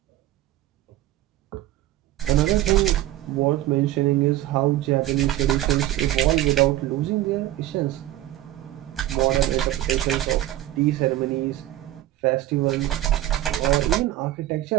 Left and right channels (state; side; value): quieter; left; 14.3 dB